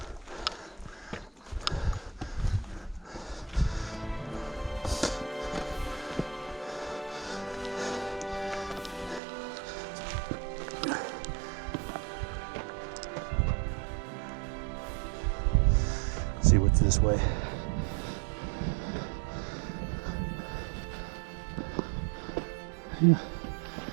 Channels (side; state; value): left; drops out; at 9.2 s